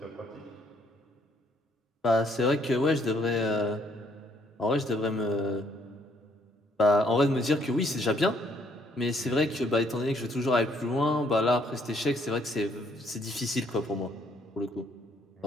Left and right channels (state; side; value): normal; both; correlation 0.67